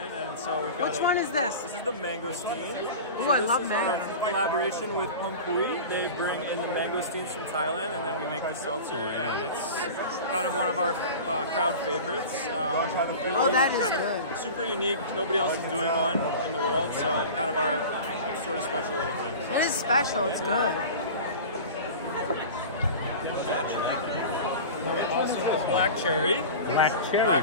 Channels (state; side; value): inverted; both; correlation -0.34